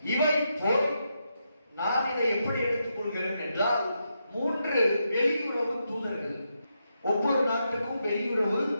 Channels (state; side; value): inverted; both; correlation -0.83